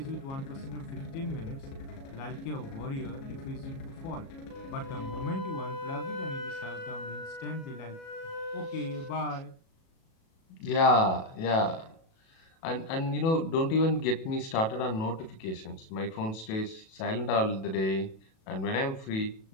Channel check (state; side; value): late; right; 37 ms